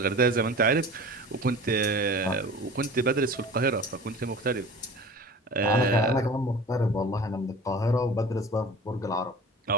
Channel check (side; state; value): both; normal; correlation 0.39